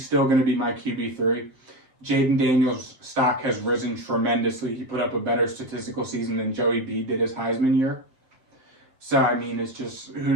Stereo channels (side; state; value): left; late; 7.9 ms